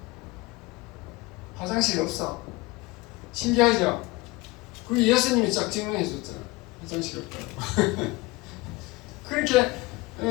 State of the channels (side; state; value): right; quieter; 22.3 dB